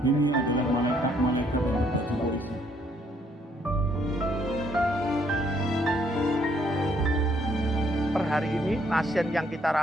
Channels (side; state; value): both; normal; correlation 0.68